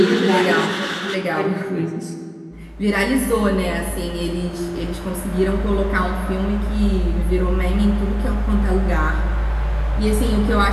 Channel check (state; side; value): identical; both; correlation 1.00